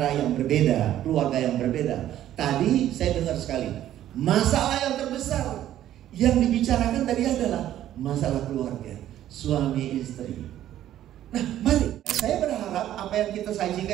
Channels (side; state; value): left; quieter; 12.3 dB